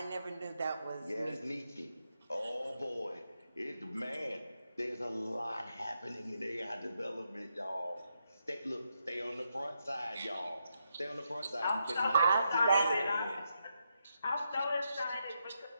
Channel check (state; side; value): inverted; both; correlation -0.82